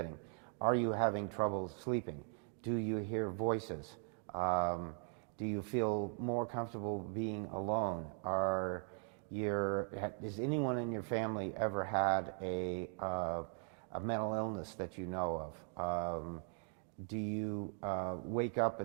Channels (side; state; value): left; quieter; 39.3 dB